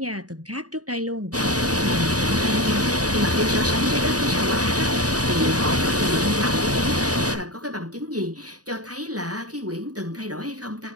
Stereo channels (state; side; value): late; left; 0.68 ms